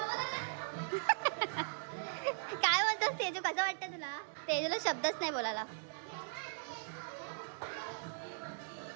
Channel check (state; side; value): silent; left; digital silence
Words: काय म्हणतोस तेजू कसं वाटतं तुला तेजूला शब्दच नाही बोलायला